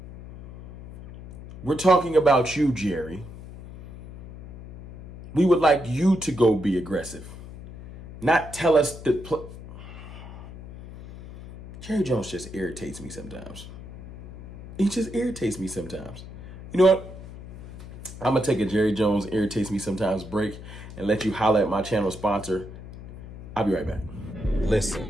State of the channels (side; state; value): left; noise; hum, 14 dB below the sound